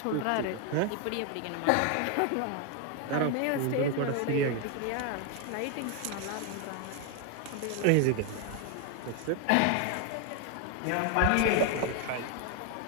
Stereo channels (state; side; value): different; both; correlation 0.01